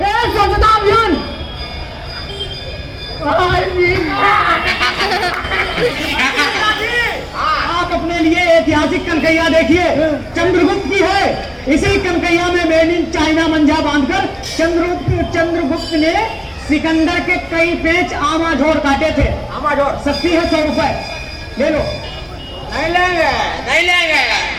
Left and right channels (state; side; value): identical; both; correlation 1.00